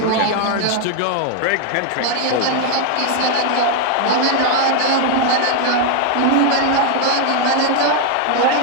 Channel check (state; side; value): different; both; correlation 0.00